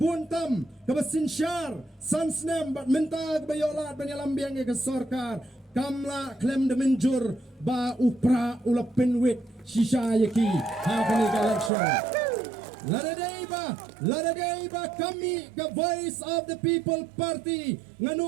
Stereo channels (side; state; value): left; drops out; at 11.7 s